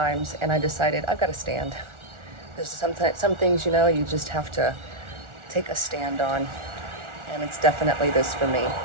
and I decided I've got to stand. There's some things, you just have to take a stand on, and it's definitely this for me.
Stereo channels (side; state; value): left; late; 1.4 ms